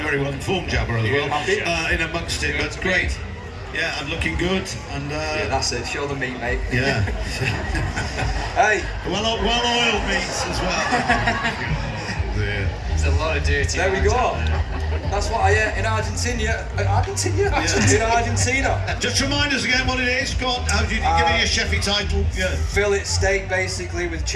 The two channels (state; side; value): identical; both; correlation 1.00